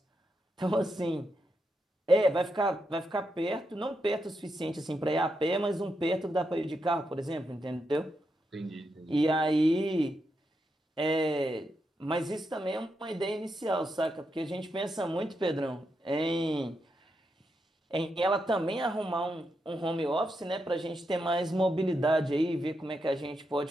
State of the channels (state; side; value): normal; both; correlation 0.84